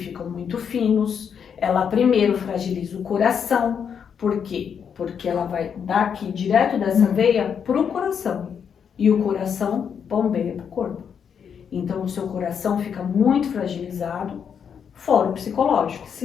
muito finos. Ela primeiro fragiliza o coração. Por quê? Porque ela vai daqui, direto dessa veia, pro coração. E o coração bombeia pro corpo. Então, o seu coração fica muito fragilizado, fora o psicológico.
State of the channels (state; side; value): quieter; right; 7.4 dB